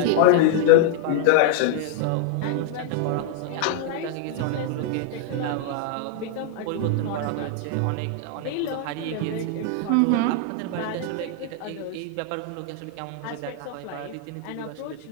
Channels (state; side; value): different; both; correlation 0.00